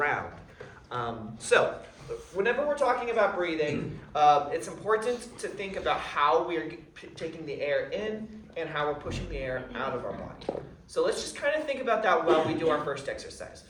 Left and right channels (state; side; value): identical; both; correlation 1.00